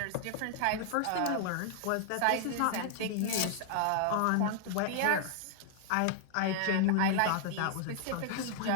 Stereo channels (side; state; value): both; different; correlation 0.00